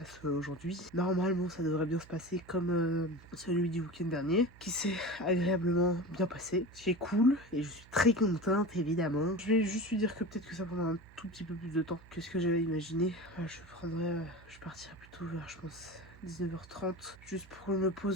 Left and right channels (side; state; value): right; noise; hum, 22 dB below the sound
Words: aujourd'hui. Normalement, ça devrait bien se passer comme celui du week-end dernier, qui s'est agréablement bien passé. Ce qui est cool, et je suis très contente, évidemment. Je vais juste lui dire que peut-être que ça prendra un tout petit peu plus de temps que ce que j'avais imaginé. Je partirai plutôt vers, je pense, 19h30, juste pour que je me